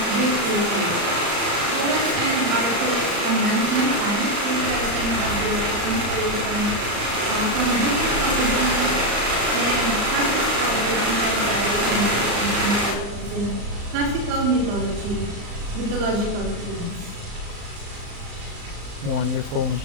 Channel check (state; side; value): late; left; 35 ms